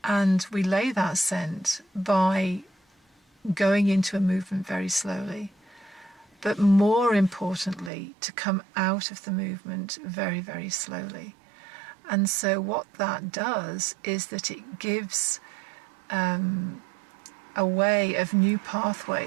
And we lay that scent by going into a movement very slowly, but more importantly, to come out of the movement very, very slowly. And so what that does is that it gives a way of new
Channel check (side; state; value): left; drops out; at 7.9 s